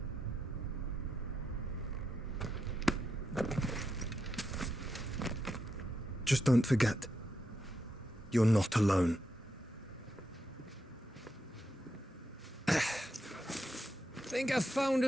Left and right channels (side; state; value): both; normal; correlation 0.84